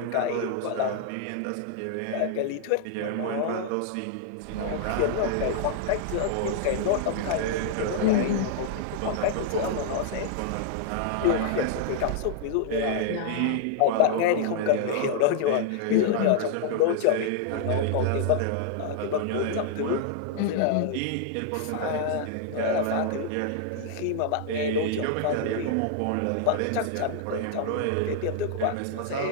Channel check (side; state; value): both; different; correlation -0.01